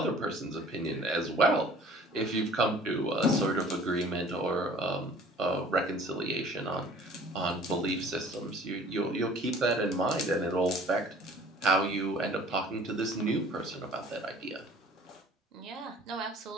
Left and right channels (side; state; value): both; normal; correlation 0.50